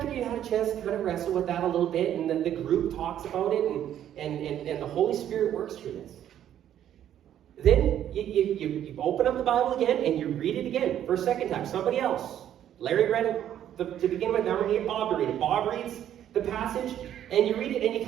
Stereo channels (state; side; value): quieter; left; 10.8 dB